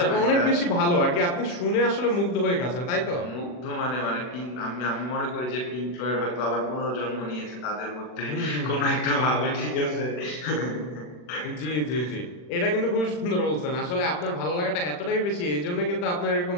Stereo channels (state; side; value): late; right; 40 ms